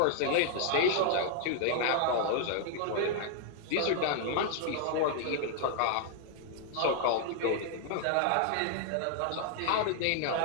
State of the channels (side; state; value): both; different; correlation 0.00